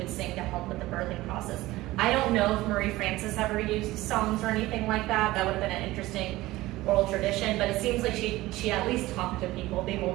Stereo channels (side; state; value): left; quieter; 18.0 dB